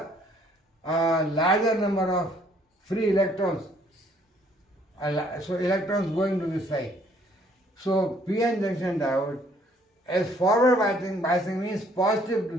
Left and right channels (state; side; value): normal; both; correlation 0.63